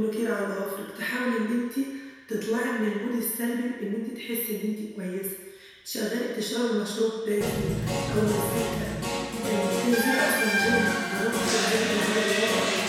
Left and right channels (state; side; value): identical; both; correlation 1.00